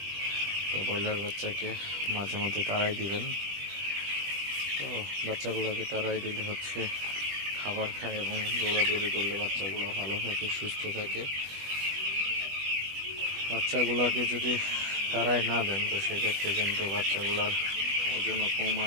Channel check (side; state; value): left; late; 20 ms